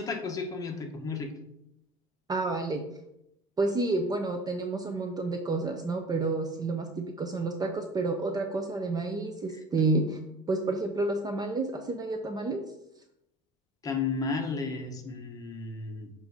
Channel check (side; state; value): both; normal; correlation 0.42